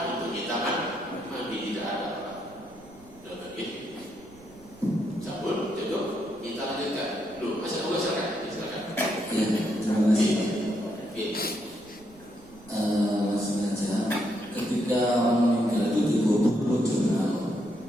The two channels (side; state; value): right; noise; rumble, 24 dB below the sound